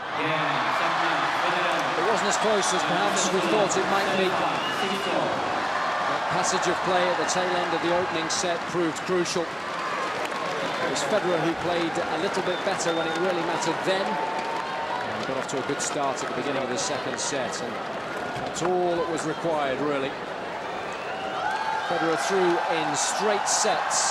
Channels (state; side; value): identical; both; correlation 1.00